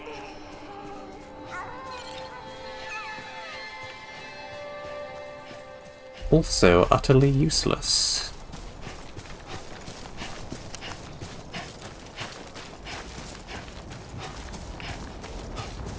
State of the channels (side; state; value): both; identical; correlation 1.00